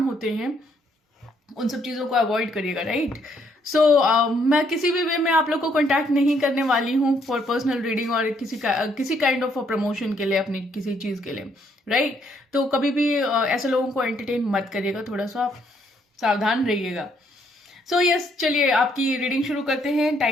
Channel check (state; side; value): normal; both; correlation 0.70